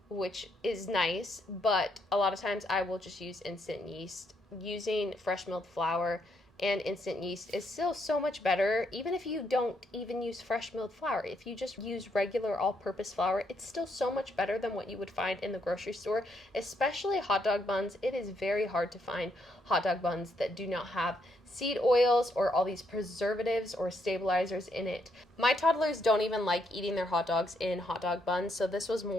which is nice, but a lot of times I will just use instant yeast. Using fresh milled flour and instant yeast is still so much better, even if you don't even use fresh milled flour. If you just use regular all-purpose flour, it's still so much better than what you would find in the grocery store, especially hot dog buns. It is very hard to find hot dog buns that do not have seed oils or all these preservatives or stabilizers in it. My toddlers don't even like eating their hot dogs in hot dog buns, so this was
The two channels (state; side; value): normal; both; correlation 0.75